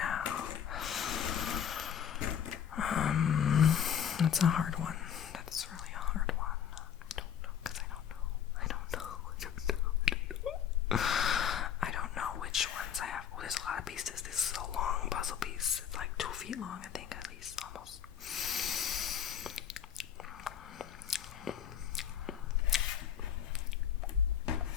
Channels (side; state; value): right; quieter; 8.9 dB